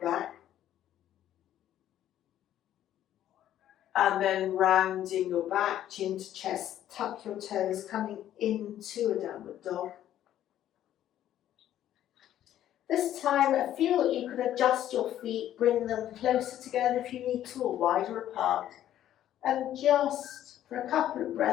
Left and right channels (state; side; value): quieter; right; 11.8 dB